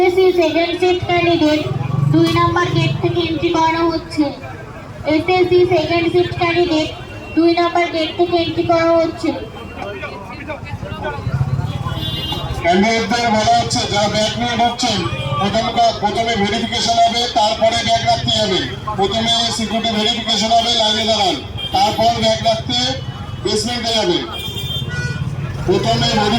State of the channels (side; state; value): both; identical; correlation 1.00